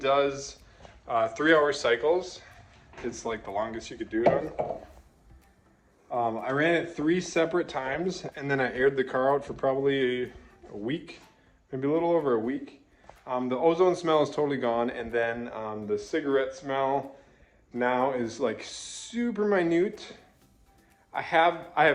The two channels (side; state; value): both; identical; correlation 1.00